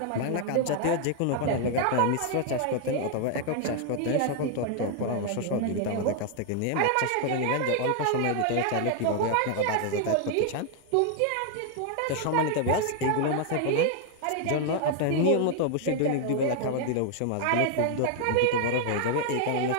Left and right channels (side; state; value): both; different; correlation 0.00